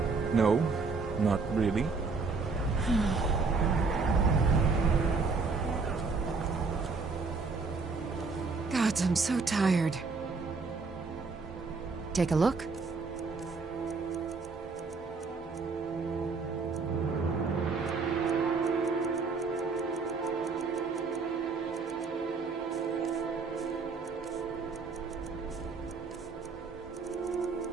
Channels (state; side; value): quieter; left; 4.4 dB